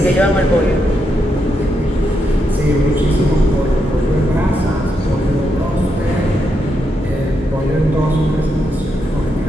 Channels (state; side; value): normal; both; correlation 0.82